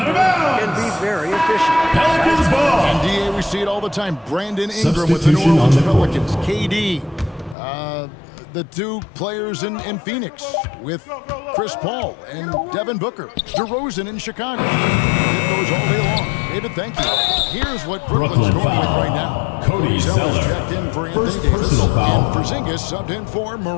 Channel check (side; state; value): right; drops out; at 7.6 s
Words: can be very efficient. Pelicans ball. And DA, we see it all the time. Brandon Ingram with the New Orleans Pelicans. KD. The 2 players in Phoenix with Chris Paul and Devin Booker. DeRozan in Chicago. It goes all day long. David, thank you. Here's what Brooklyn's going with right now. Cody Zeller. Checked in for First Anthony Davis. personal foul. And Porzingis subbed in for